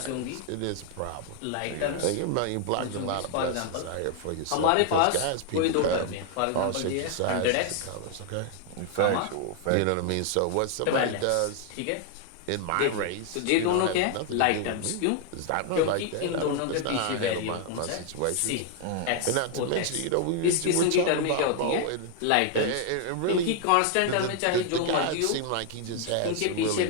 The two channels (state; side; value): different; both; correlation 0.00